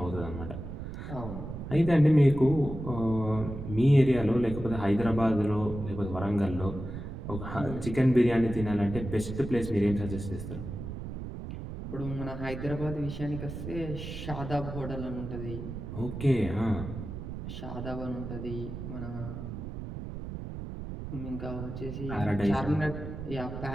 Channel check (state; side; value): noise; right; rumble, 8 dB below the sound